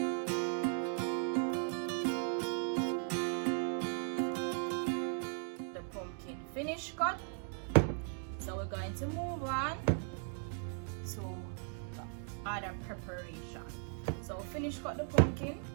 Finish cut. So we're going to move on to the other preparation. So finish cut the pumpkin.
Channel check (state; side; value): silent; left; 53 dB below the other